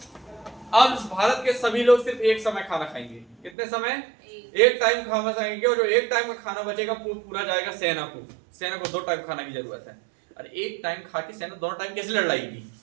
अब भारत के सभी लोग सिर्फ एक समय खाना खाएंगे। कितने समय? एक टाइम खाना खाएंगे, और जो एक टाइम का खाना बचेगा पूरा जाएगा सेना को। सेना को 2 टाइम खाना की जरूरत है। और एक टाइम खा के सेना 2 टाइम कैसे लड़ाएगी?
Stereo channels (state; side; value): drops out; left; at 3.5 s